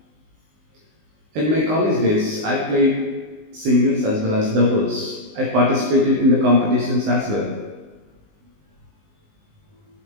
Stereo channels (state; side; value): late; left; 19 ms